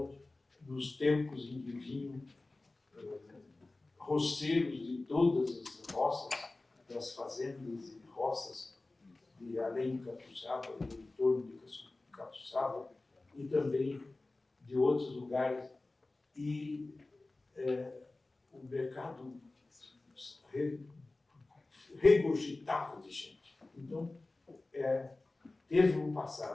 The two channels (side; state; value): right; quieter; 3.1 dB